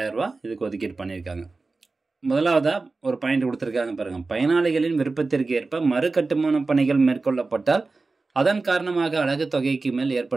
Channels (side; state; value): left; quieter; 3.7 dB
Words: ரூபா இதுக்கு ஒதுக்கீடு பண்ணியிருக்காங்க. முதலாவதாக ஒரு பாயிண்ட் கொடுத்துருக்காங்க பாருங்கள். பயனாளிகளின் விருப்பத்திற்கு ஏற்ப மறு கட்டுமான பணிகள் மேற்கொள்ளப்பட்டால் அதன் காரணமாக அலகு தொகைக்கு மேல்